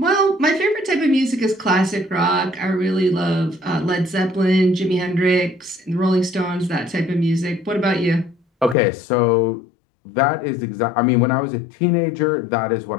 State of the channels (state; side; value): drops out; right; at 8.8 s